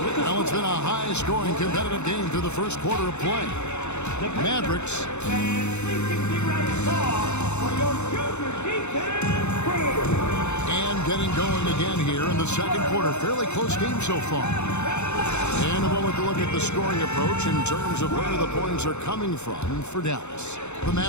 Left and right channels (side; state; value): right; late; 0.82 ms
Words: Well, it's been a high-scoring competitive game through the first quarter of play. Mavericks. And getting going again here in the second quarter. Fairly close game so far. And a moment to look at the scoring approach in terms of where the points are coming from for Dallas. The